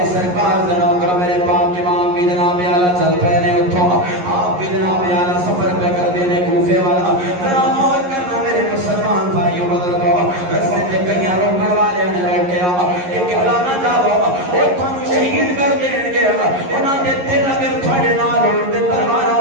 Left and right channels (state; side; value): late; left; 11 ms